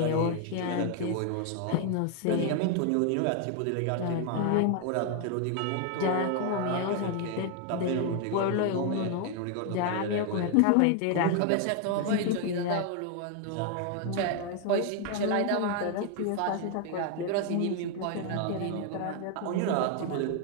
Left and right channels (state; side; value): different; both; correlation 0.00